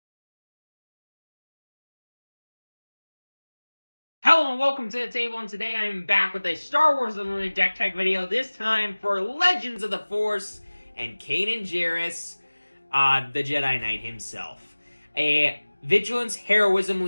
Hello and welcome to the table, and today I am back with a Star Wars Unlimited deck tech video, this time for Legends of the Force and Kanan Jarrus, the Jedi Knight himself. A Vigilance Heroism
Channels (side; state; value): both; inverted; correlation -1.00